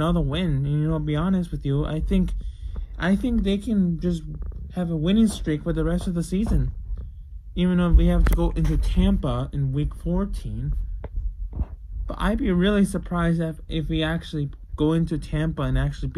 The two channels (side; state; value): both; identical; correlation 1.00